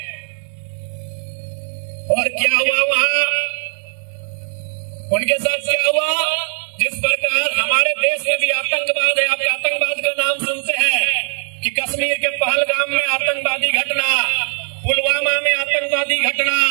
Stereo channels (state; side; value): silent; left; digital silence